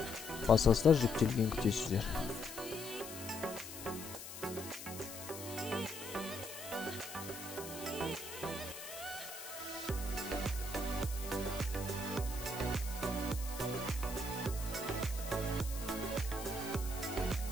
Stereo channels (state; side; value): noise; left; hiss, 10 dB below the sound